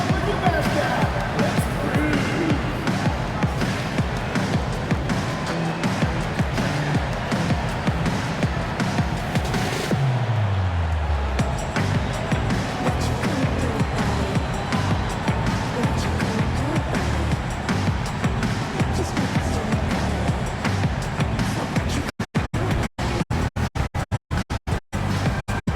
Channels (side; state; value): both; identical; correlation 1.00